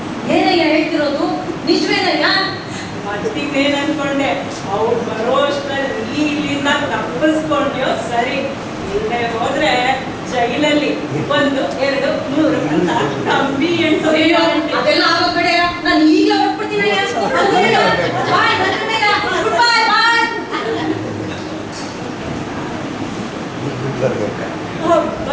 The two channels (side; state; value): both; identical; correlation 1.00